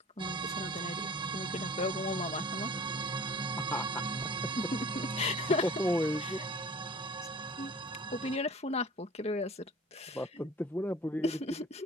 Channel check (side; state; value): both; normal; correlation 0.45